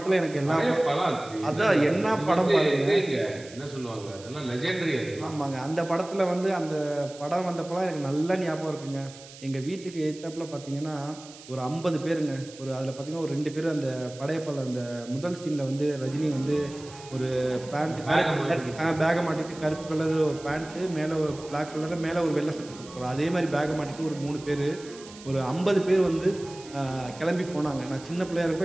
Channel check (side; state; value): right; noise; hiss, 18 dB below the sound